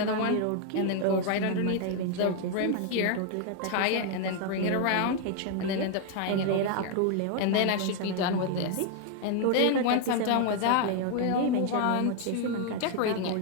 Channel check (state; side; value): different; both; correlation 0.00